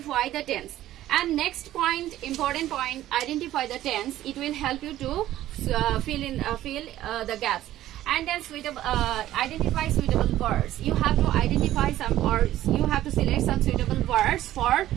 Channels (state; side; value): quieter; left; 13.8 dB